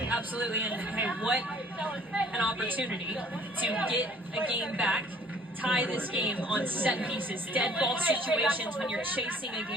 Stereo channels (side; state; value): both; normal; correlation 0.56